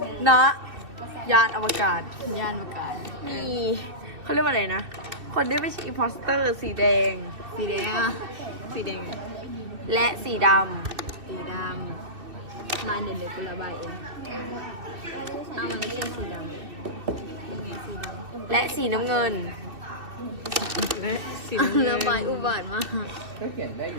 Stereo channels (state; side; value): late; left; 2.7 ms